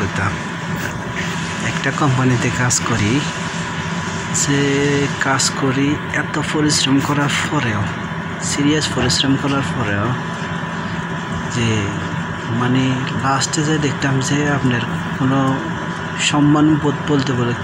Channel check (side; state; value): both; identical; correlation 1.00